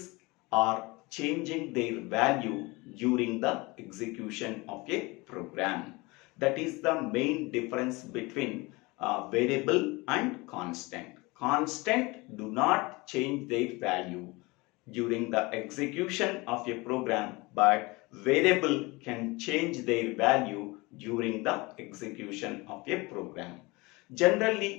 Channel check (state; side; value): quieter; right; 24.2 dB